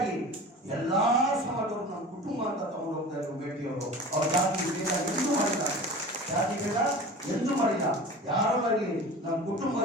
ಎಲ್ಲಾ ಸಮಾಜವರು ನಮ್ಮ ಕುಟುಂಬ ಅಂತ ತಗೊಂಡು ಹೋಗ್ತಾ ಇದ್ರು ಮೇಟಿಯವರು. ಅವ್ರ ಜಾತಿ ಭೇದ ಎಂದೂ ಮಾಡಿಲ್ಲ, ಜಾತಿ ಭೇದ ಎಂದೂ ಮಾಡಿಲ್ಲ. ಯಾರೋ ಆಗಲಿ ನಮ್ಮ ಕುಟುಂಬ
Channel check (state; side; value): normal; both; correlation 0.37